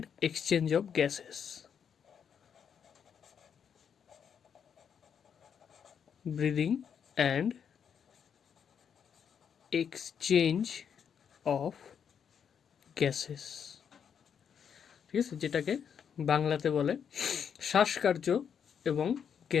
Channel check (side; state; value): right; quieter; 7.6 dB